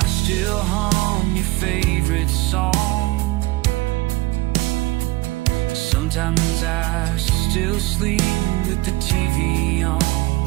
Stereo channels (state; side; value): quieter; left; 19.8 dB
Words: still hum your favorite song. Sometimes I still sleep with the TV on.